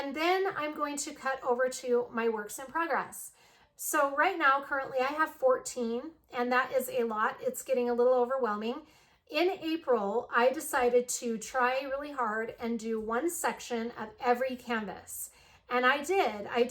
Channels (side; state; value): both; identical; correlation 1.00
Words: then I'm going to cut over to my works in progress. So right now, currently I have 14, and that is a lot. It's getting a little overwhelming. In April, I decided to try really hard and do one section of every canvas. And I did